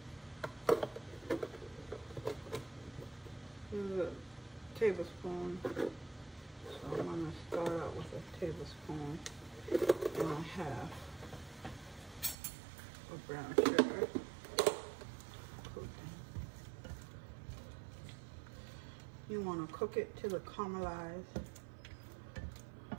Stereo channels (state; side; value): drops out; left; at 12.4 s